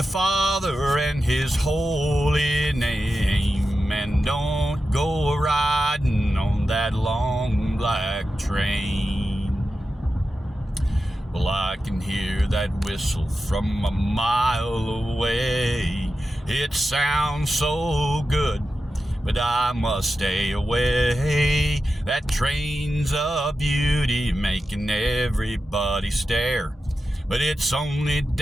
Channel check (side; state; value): both; normal; correlation 0.91